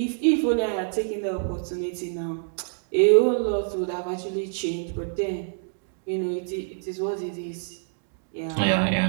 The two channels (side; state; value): left; silent; digital silence